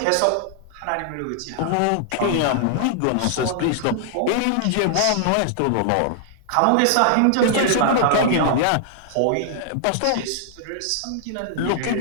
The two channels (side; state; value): both; different; correlation -0.01